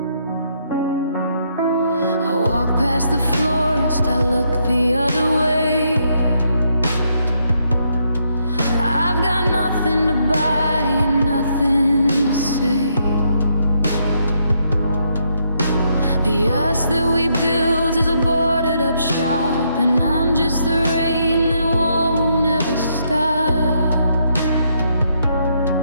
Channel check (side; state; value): both; inverted; correlation -0.75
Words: I walk past the florist, I look the other way. I've got nothing to buy and nothing to say. The us that we built is a boarded up shop, and I'm just the rain that won't ever stop.